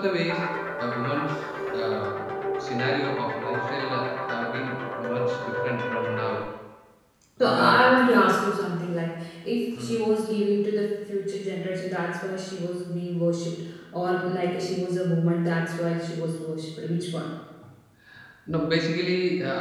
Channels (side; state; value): both; identical; correlation 1.00